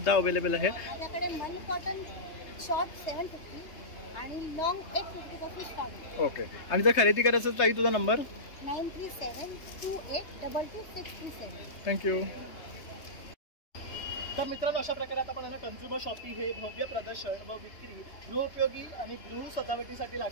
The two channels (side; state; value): right; late; 3.2 ms